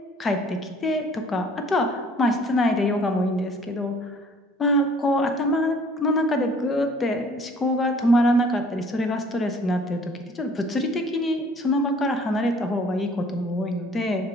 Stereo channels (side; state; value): both; normal; correlation 0.55